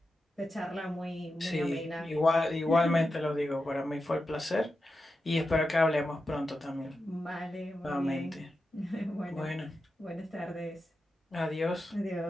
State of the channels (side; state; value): both; normal; correlation 0.90